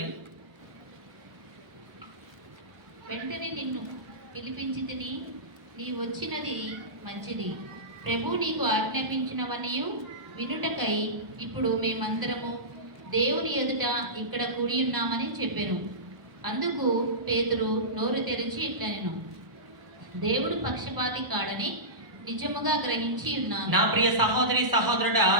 వెంటనే నిన్ను పిలిపించి తిని నీ వచ్చినది మంచిది. ప్రభు నీకు ఆజ్ఞాపించినవనియు వినుటకై ఇప్పుడు మేమందరము దేవుని ఎదుట ఇక్కడ కూడి ఉన్నామని చెప్పాను. అందుకు పేతురు నోరు తెరిచి ఇట్లనెను, దేవుడు పక్షపాతి కాడని నిజముగా గ్రహించి ఉన్నాను. నా ప్రియ సహోదరి సహోదరుడా,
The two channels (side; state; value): left; late; 1.0 ms